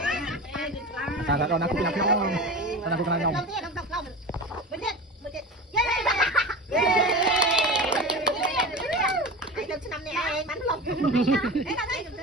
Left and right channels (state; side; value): normal; both; correlation 0.30